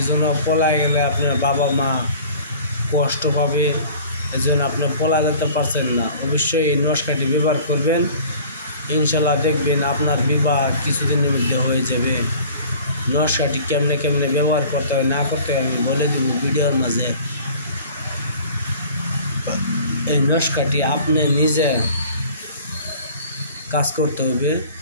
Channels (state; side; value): inverted; both; correlation -0.47